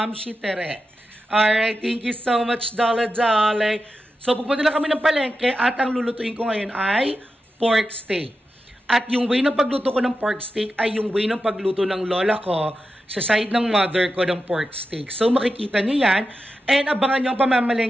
Shi Tere. Alright, thank you so much, Dala-Dala. So, pupunta na kami ng palengke at ang lulutuin ko ngayon ay pork steak. At yung way ng pagluto ko ng pork steak ay yung way ng pagluto ng lola ko sa side ng mother ko ng pork steak. So, makikita nyo yan. And abangan nyo ang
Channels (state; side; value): normal; both; correlation 0.90